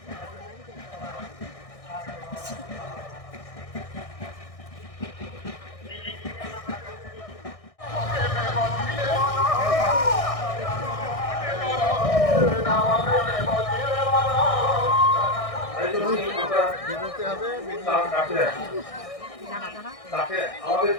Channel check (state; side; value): late; right; 1.6 ms